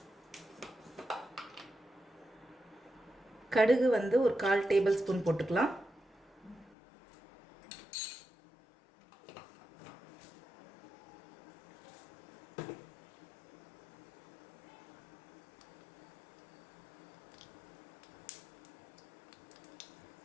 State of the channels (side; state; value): right; drops out; at 6.8 s